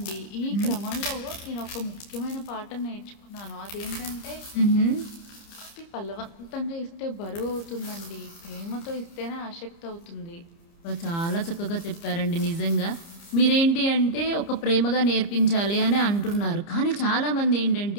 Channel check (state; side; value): late; right; 29 ms